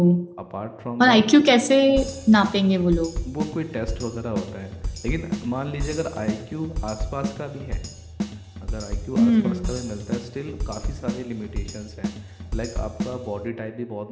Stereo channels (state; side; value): identical; both; correlation 1.00